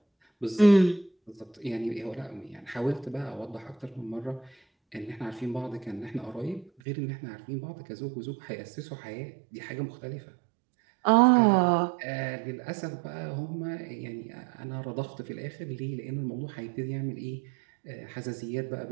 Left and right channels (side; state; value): left; drops out; at 6.7 s